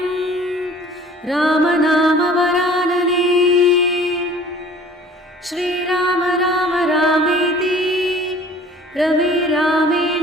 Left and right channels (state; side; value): normal; both; correlation 0.49